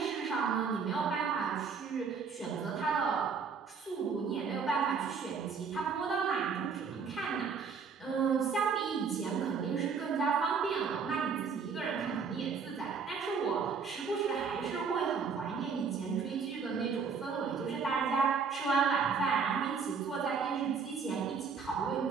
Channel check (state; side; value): quieter; left; 5.7 dB